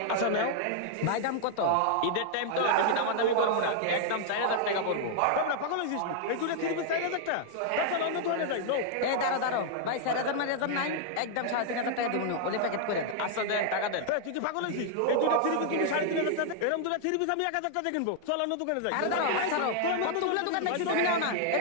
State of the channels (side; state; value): both; different; correlation -0.01